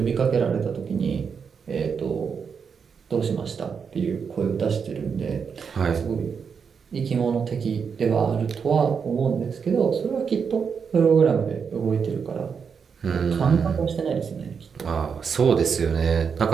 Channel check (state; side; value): quieter; left; 6.3 dB